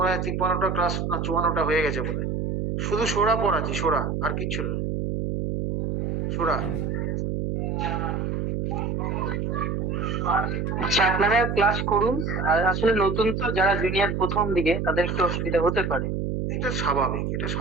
হয় 53টা ক্লাস না 54টা হয়ে গেছে বলে। শুধু সোরা পড়াচ্ছি, সোরা, আর কিচ্ছু না। সোরা আচ্ছা, আপনারা ক্লাস করুন। আর আসলে নতুন তো, যারা জুনিয়র প্রথম দিকে, তাদের একটু অসুবিধা হতে পারে। এটা স্বাভাবিক, এটা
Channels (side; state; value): right; noise; hum, 1 dB below the sound